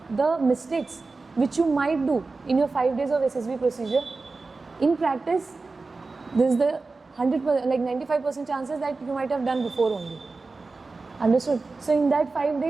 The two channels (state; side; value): quieter; left; 3.8 dB